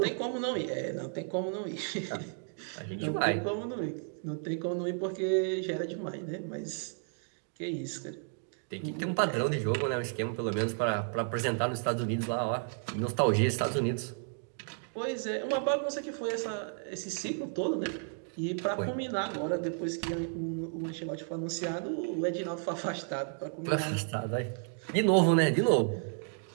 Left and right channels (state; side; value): silent; left; 56 dB below the other